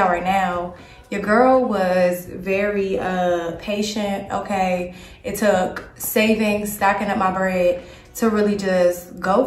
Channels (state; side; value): identical; both; correlation 1.00